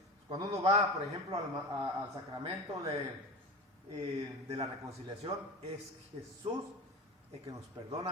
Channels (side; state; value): both; normal; correlation 0.29